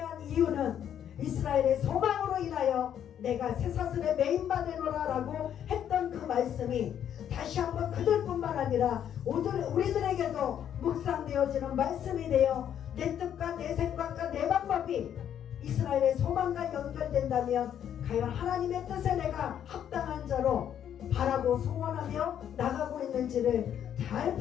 이유는 이스라엘의 소망으로 인하여 내가 쇠사슬에 매인받으노라 라고 했던 그 말씀이 다시 한번 그들뿐만 아니라 우리들에게도 묵상되어지는 말씀이 되어 내 뜻과 내 생각과 내 방법이 이스라엘의 소망과 연결된다면 과연 하나님의 뜻에 내가 합당한 자로 바라고 소원하며 나가고 있는지를 잘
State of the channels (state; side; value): quieter; right; 9.6 dB